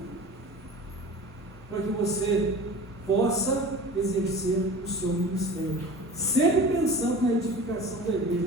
para que você possa exercer o seu ministério, sempre pensando na edificação da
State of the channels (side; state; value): both; normal; correlation 0.38